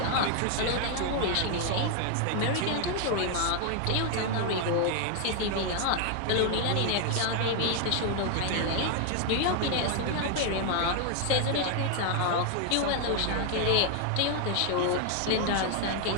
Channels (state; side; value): different; both; correlation 0.00